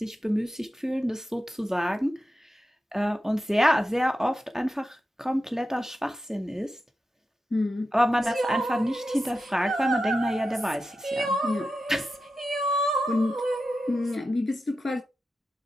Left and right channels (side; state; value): both; normal; correlation 0.91